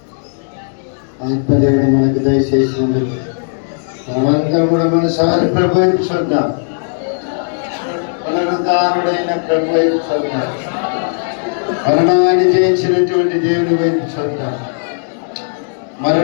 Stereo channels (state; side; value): silent; right; digital silence